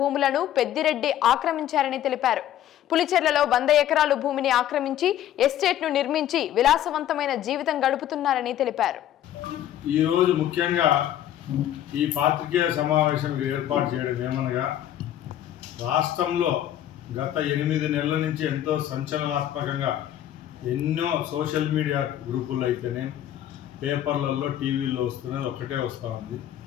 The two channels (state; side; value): quieter; right; 11.7 dB